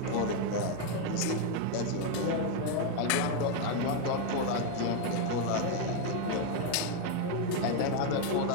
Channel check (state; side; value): different; both; correlation 0.01